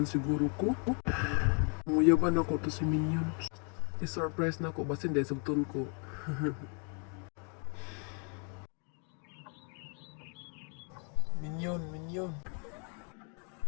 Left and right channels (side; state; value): right; quieter; 39.6 dB